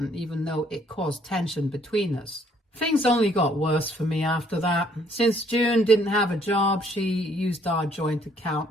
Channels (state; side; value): normal; both; correlation 0.65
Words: even though it caused tension between us. Things only got worse for me after that. Since June didn't have a job, she used our joint account,